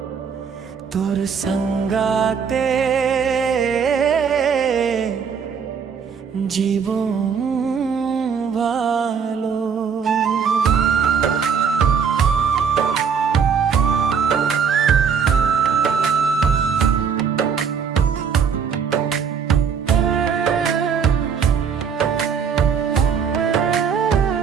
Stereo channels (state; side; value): quieter; left; 6.7 dB